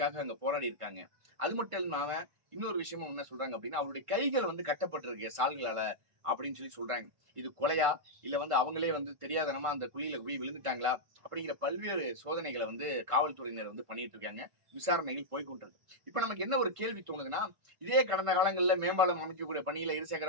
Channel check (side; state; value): left; late; 1.5 ms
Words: அங்க போராடி இருக்காங்க. அது மட்டும் இல்லாம இன்னொரு விஷயமும் என்ன சொல்றாங்க அப்படின்னா, அவருடைய கைகள் வந்து கட்டப்பட்டிருக்கு சால்களால அப்படின்னு சொல்றாங்க. இது கொலையா இல்ல வந்து அவங்களே வந்து தெரியாதனமா அந்த குழியில போய் விழுந்துட்டாங்களா அப்படிங்கிற பல்வேறு சோதனைகளை வந்து காவல்துறையினர் வந்து பண்ணிட்டு இருக்காங்க. விசாரணைகள் போய்கொண்டிருக்கு. இப்ப நமக்கு என்ன ஒரு கேள்வி தோணுதுன்னா, இதே கடந்த காலங்கள்ல மேம்பாலம் அமைக்கக்கூடிய பணியில